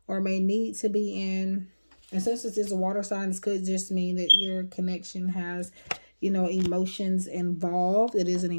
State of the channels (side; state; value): both; inverted; correlation -1.00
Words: or may need to be in. And since this is a water sign, this could just mean that your connection has, emotions involved. It is an